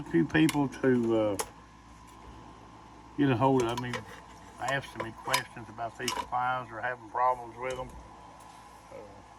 few people to get a hold of me, asking me questions about these supplies or having problems with them,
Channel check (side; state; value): both; identical; correlation 1.00